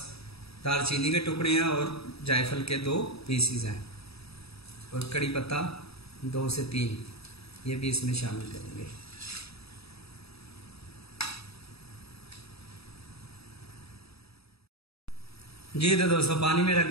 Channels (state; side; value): late; right; 0.78 ms